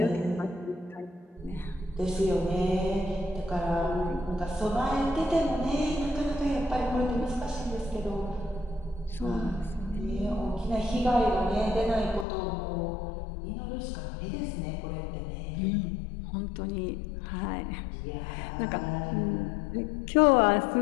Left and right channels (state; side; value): drops out; right; at 12.2 s